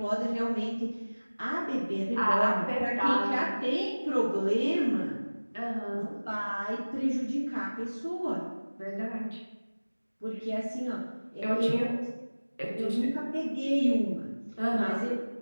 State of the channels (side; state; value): both; inverted; correlation -1.00